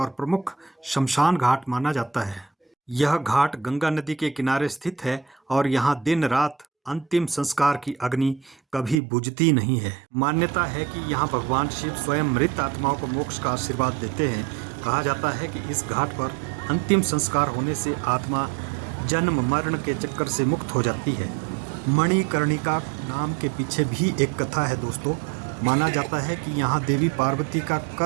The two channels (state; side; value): drops out; left; at 9.0 s